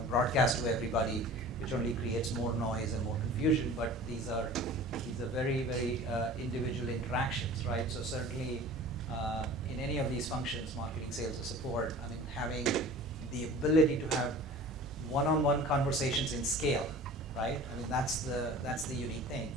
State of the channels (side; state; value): both; normal; correlation 0.42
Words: broadcast to everybody, which only creates more noise and more confusion. But these are very, very individual interactions, right? So certainly in any of these functions, marketing, sales, or support, I mean, having the ability to have one-on-one conversations in scale, right? I mean, that's the unique thing.